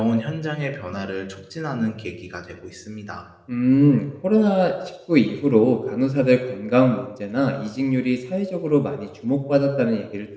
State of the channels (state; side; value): identical; both; correlation 1.00